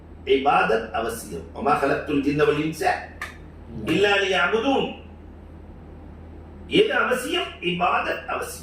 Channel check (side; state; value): both; identical; correlation 1.00